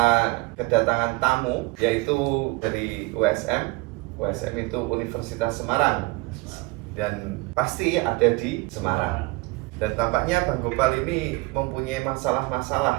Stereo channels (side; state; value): left; quieter; 24.1 dB